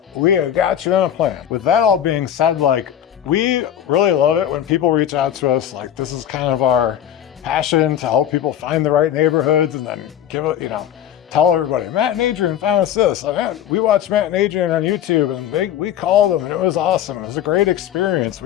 we have got you on a plan. With that all being said, like, we really love it when people reach out to us. Like, this is kind of our passion to help people find the right neighborhoods and then give it, you know, tell everybody, Matt and Adrian found us this. Like, we watched Matt and Adrian on YouTube and we called them and it was awesome. It was a great experience.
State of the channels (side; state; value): right; quieter; 10.4 dB